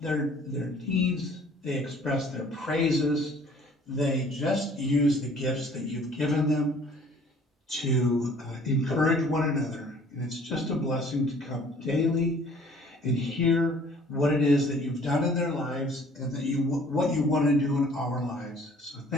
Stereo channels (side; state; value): both; normal; correlation 0.54